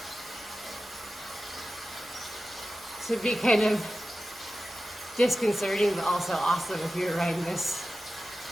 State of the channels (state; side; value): normal; both; correlation 0.94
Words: This would be kind of disconcerting, but also awesome if you were riding this.